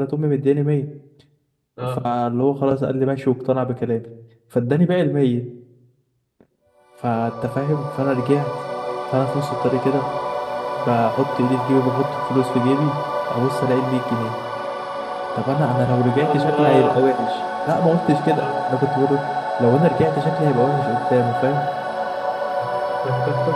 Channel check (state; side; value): identical; both; correlation 1.00